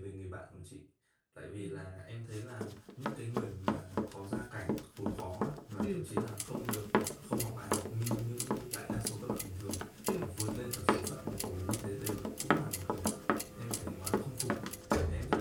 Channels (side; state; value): both; identical; correlation 1.00